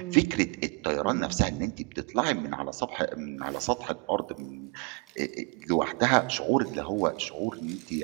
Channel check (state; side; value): quieter; left; 32.7 dB